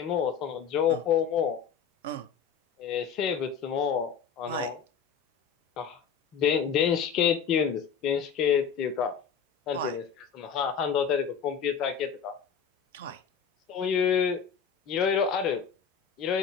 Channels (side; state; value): right; quieter; 7.0 dB